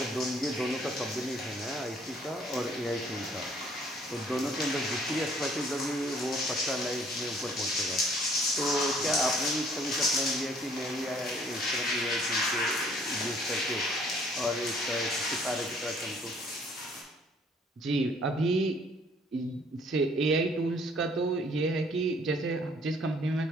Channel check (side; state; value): both; normal; correlation 0.60